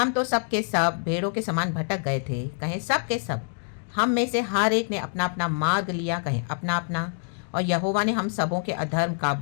तो सब के सब भेड़ों के समान भटक गए थे, कहें सब के सब। हम में से हर एक ने अपना अपना मार्ग लिया, कहें अपना अपना। और यहोवा ने हम सबों के अधर्म का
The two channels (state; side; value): silent; right; digital silence